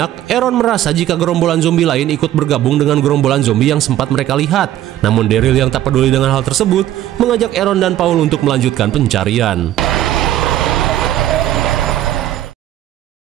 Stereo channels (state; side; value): quieter; left; 12.8 dB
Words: Aaron merasa jika gerombolan zombie lain ikut bergabung dengan gerombolan zombie yang sempat mereka lihat. Namun Daryl yang tak peduli dengan hal tersebut, mengajak Aaron dan Paul untuk melanjutkan pencarian.